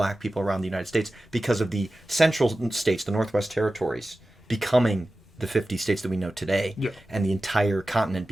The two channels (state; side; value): normal; both; correlation 0.95